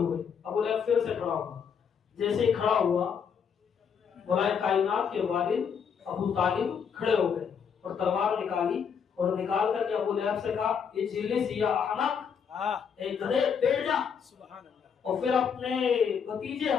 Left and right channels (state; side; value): quieter; right; 6.9 dB